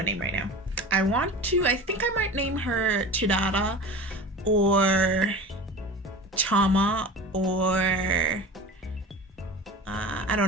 name right now. I think I might name her Chidara or Chama, or I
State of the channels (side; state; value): both; normal; correlation 0.34